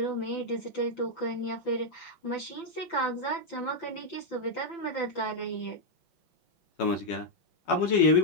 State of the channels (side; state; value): right; late; 5.9 ms